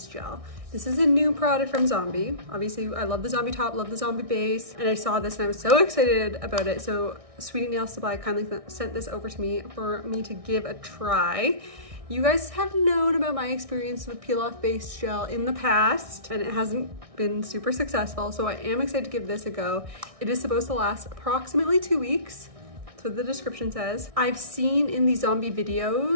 Gel. This is a new product from Zombie. Obviously I love the Zombie top, love the Zombie base, and I saw this and I was so excited about it. So Sweetie Nail Supply kindly sent this over to me for me to give a try. You guys have known about my experience with peel off base gel in the past, and it hasn't been super successful, so I am excited to give this a go. It is supposed to last approximately 2 weeks. That's what the description says. I've seen in the Zombie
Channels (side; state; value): left; late; 1.6 ms